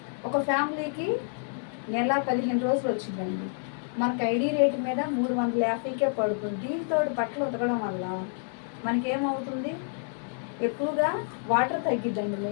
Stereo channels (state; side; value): silent; right; 59 dB below the other